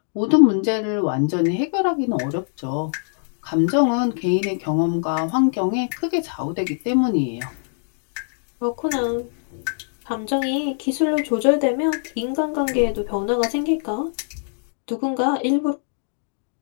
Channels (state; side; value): silent; right; digital silence